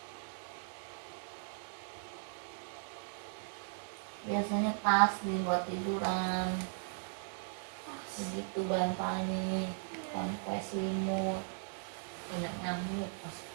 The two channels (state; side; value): silent; left; digital silence